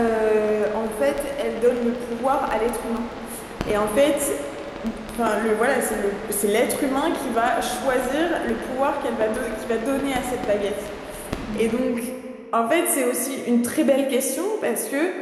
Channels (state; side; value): identical; both; correlation 1.00